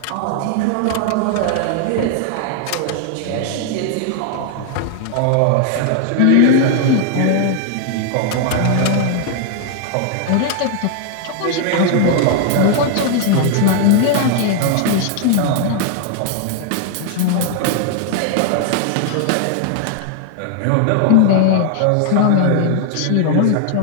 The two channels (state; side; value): different; both; correlation 0.00